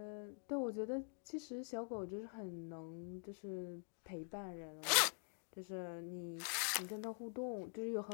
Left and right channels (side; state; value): right; silent; digital silence